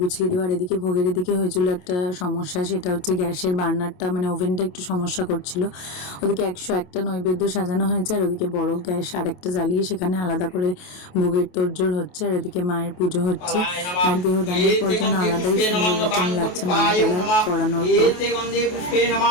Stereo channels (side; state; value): right; late; 28 ms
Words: গুছিয়ে দেওয়া। আর এদিকে ভোগের এদিকে হয়েছিল একটা সমস্যা, সেটা হচ্ছে গ্যাসের বার্নারটা মানে ওভেনটা একটু সমস্যা করছিল। ওদিকে 101টা নৈবেদ্য সাজানো হয়েছে, আর ওদিকে বড় গ্যাস আরেকটা জ্বালিয়ে সেখানে আলাদা করে ভোগের তোড়জোড় হচ্ছে। আর এদিকে মায়ের পুজো হচ্ছে। আর দেহদানের পর যেন আলাদাই সুন্দর রকম লাগছে মালা টালা পরানোর